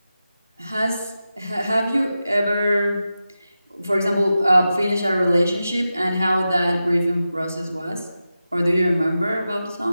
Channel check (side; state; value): both; inverted; correlation -0.92